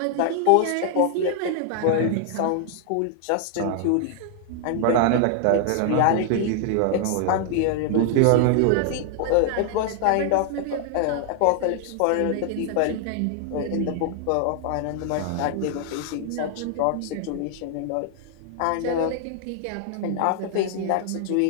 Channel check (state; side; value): different; both; correlation 0.00